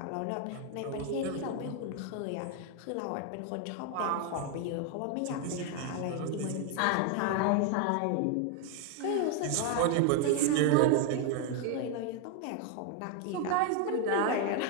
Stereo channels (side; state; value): both; different; correlation 0.01